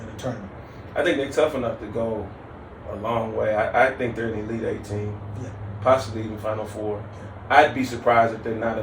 the tournament? I think they're tough enough to go a long way. I think they're an Elite Eight team, possibly even Final Four. I'd be surprised if they're not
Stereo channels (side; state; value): both; identical; correlation 1.00